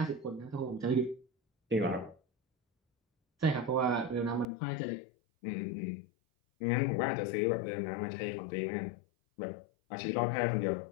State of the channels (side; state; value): right; drops out; at 4.5 s